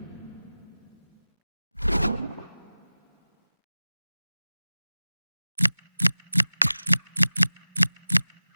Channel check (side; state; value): both; inverted; correlation -0.99